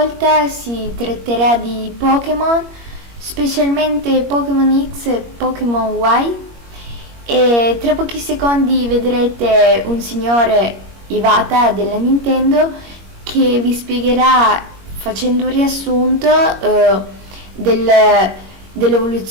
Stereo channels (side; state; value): left; late; 21 ms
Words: si tratterà di Pokémon, specialmente Pokémon X e Pokémon Y, e tra pochi secondi vedrete un signore Iwata della Nintendo che vi spiegherà, facendo un riassunto